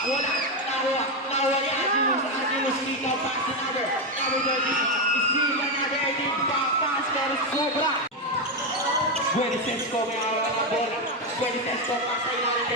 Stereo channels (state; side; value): normal; both; correlation 0.08